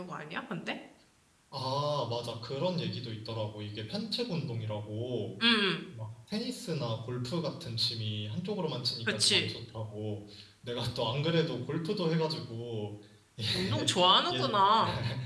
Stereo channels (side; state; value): both; identical; correlation 1.00